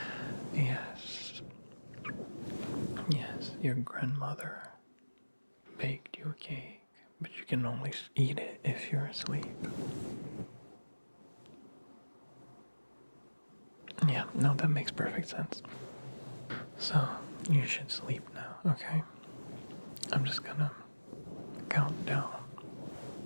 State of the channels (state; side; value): inverted; both; correlation -1.00